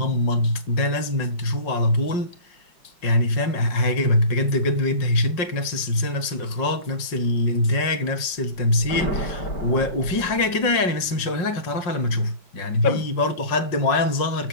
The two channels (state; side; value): late; right; 5.5 ms